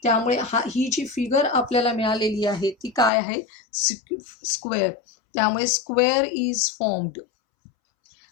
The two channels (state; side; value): drops out; right; at 3.1 s